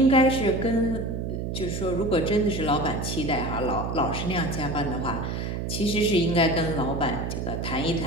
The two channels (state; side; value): noise; right; hum, 3 dB below the sound